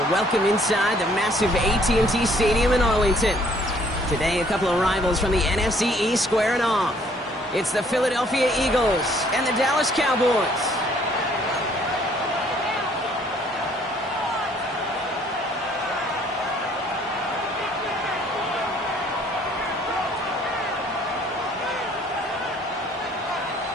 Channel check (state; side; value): normal; both; correlation 0.61